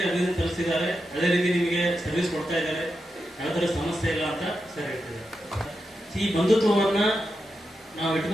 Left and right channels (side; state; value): both; normal; correlation 0.88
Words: ಅಭಿನಂದನೆ ಸಲ್ಲಿಸಿದ್ದಾರೆ, ಅದೇ ರೀತಿ ನಿಮಗೆ ಸರ್ವಿಸ್ ಕೊಡ್ತಾ ಇದ್ದಾರೆ, ಯಾವ ತರ ಸಮಸ್ಯೆ ಇಲ್ಲ ಅಂತ ಸರ್ ಹೇಳ್ತಿದ್ದಾರೆ. ಈ ಬಂಧುತ್ವವನ್ನ ನಾವು